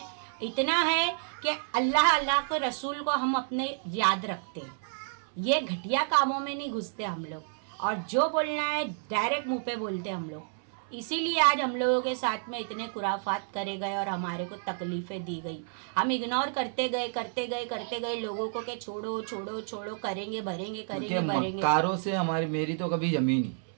इतना है कि अल्लाह के रसूल को हम अपने याद रखते हैं। ये घटिया कामों में नहीं घुसते हम लोग, और जो बोलना है डायरेक्ट मुंह पे बोलते हम लोग। इसीलिए आज हम लोगों के साथ में इतने खुराफात करे गए और हमारे को तकलीफ़ें दी गई। हम इग्नोर करते गए लोगों को, कि छोड़ो छोड़ो छोड़ो, करेंगे भरेंगे, करेंगे भरेंगे। मक्कारों से मेरी तो कभी जमी नहीं।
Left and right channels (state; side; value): silent; left; 58 dB below the other